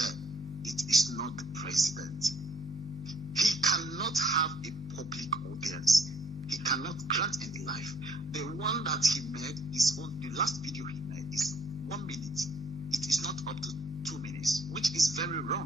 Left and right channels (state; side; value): normal; both; correlation 0.64